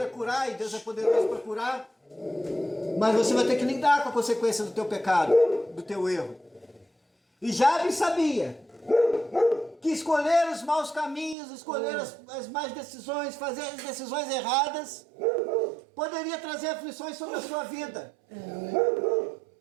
curar, e Deus é poderoso para curar. Mas você vai ter que lidar com a consequência do teu pecado, do teu erro. E Jabes sabia que escolher os maus caminhos, escolher as más decisões, fazer as decisões erradas, poderia trazer aflições sobre a sua vida.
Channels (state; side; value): drops out; left; at 11.4 s